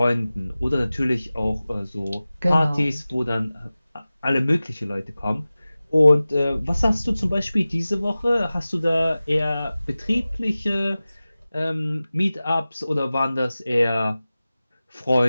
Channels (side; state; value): both; inverted; correlation -0.97